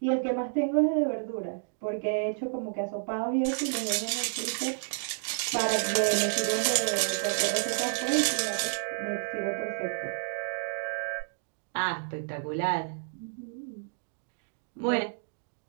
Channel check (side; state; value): left; silent; digital silence